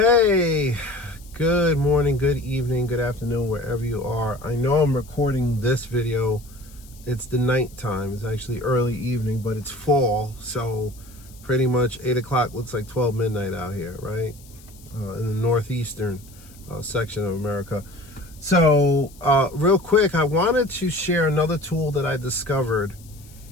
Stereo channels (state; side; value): noise; left; hiss, 24 dB below the sound